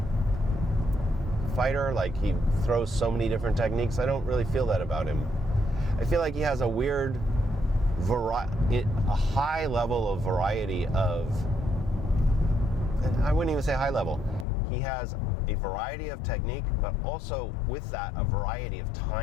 fighter? Like he throws so many different techniques? I don't really feel that about him. I feel like he has a weird a high level of variety of, I wouldn't even say high level. He has a variety of technique, but also with that, a variety of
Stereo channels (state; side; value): drops out; right; at 14.5 s